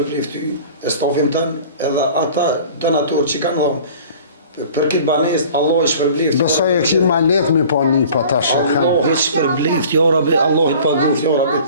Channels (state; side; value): inverted; both; correlation -0.45